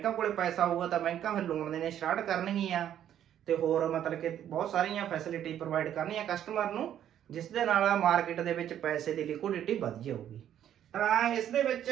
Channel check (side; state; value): left; quieter; 10.5 dB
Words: ਕੋਲੇ ਪੈਸਾ ਹੋਊਗਾ ਤਾਂ ਬੈਂਕਾਂ ਫਿਰ ਲੋਨ ਦੇਣੇ ਸਟਾਰਟ ਕਰਨਗੀਆਂ ਤੇ ਹੋਰ ਮਤਲਬ ਕਿ ਬਹੁਤ ਸਾਰੀਆਂ ਫੈਸਿਲਿਟੀ ਪ੍ਰੋਵਾਈਡ ਕਰਨੀਆਂ ਕਸਟਮਰ ਨੂੰ, ਜਿਸ ਦੇ ਨਾਲ ਮਾਰਕੀਟ ਦੇ ਵਿੱਚ ਪੈਸੇ ਦੀ ਲਿਕੁਇਡਿਟੀ ਵੱਧ ਜਾਊਗੀ। ਤਾਂ ਇਸ ਦੇ ਵਿੱਚ